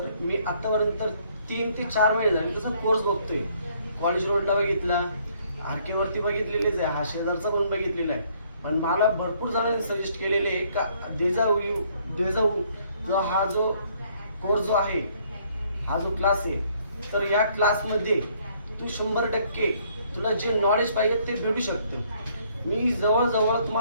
मी आत्तापर्यंत 3 ते 4 महिने झाले तसा कोर्स बघतोय. कॉलेज रोडला बघितला, आरकेवरती बघितलेलेच आहे, हा शेजारचा पण बघितलेला आहे. पण मला भरपूर जणांनी सजेस्ट केलेले आहे का देजाऊ जो हा जो कोर्स जो आहे, हा जो क्लास आहे, तर या क्लासमध्ये तू 100% तुला जे नॉलेज पाहिजे ते भेटू शकतं. मी जवळजवळ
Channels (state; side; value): inverted; both; correlation -0.65